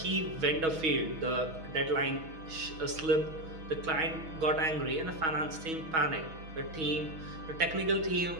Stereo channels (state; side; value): late; left; 6.2 ms